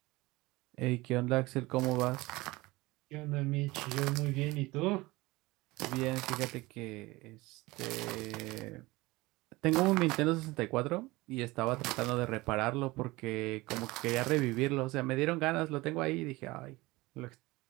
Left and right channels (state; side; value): quieter; left; 21.2 dB